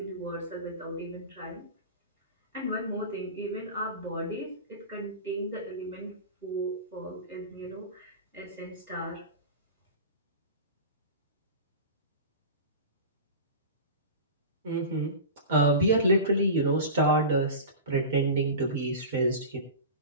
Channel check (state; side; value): inverted; both; correlation -0.30